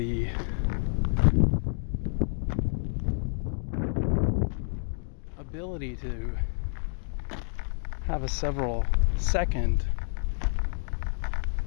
ability to have a several second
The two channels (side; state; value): right; silent; digital silence